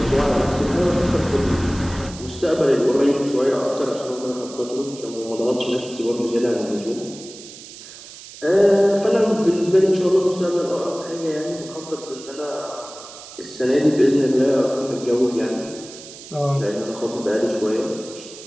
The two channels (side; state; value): right; noise; hiss, 16 dB below the sound